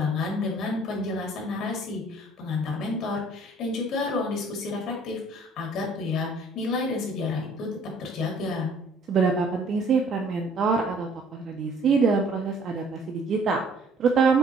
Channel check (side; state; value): both; normal; correlation 0.57